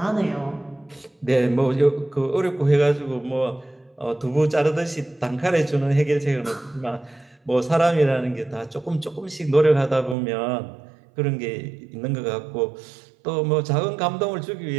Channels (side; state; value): left; drops out; at 10.2 s